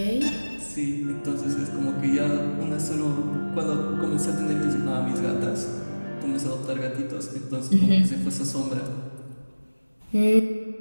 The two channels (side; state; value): both; inverted; correlation -1.00